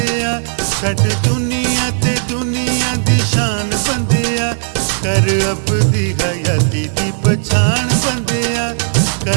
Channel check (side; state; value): left; silent; digital silence